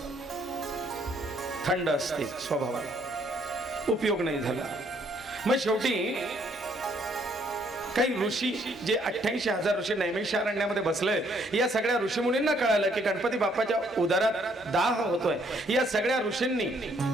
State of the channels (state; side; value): normal; both; correlation 0.67